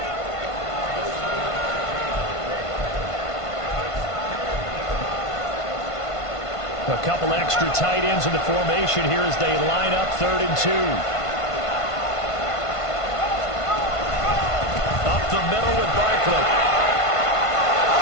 A couple extra tight ends in the formation here as they line up 3rd and 2. Up the middle with Barkley.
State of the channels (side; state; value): right; late; 1.5 ms